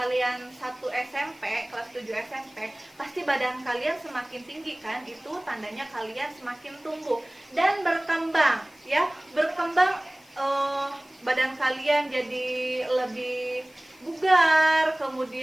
1 SMP, kelas 7 SMP, pasti badan kalian semakin tinggi, kan? Itu tandanya kalian semakin tumbuh dan berkembang, ya. Berkembang, badan kalian jadi lebih bugar,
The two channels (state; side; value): noise; left; hiss, 28 dB below the sound